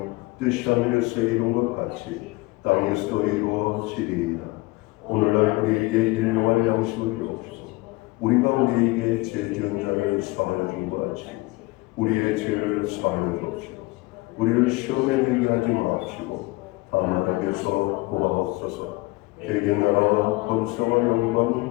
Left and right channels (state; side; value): quieter; right; 22.2 dB